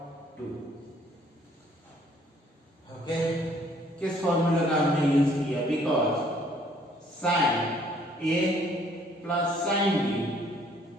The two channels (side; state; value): both; normal; correlation 0.62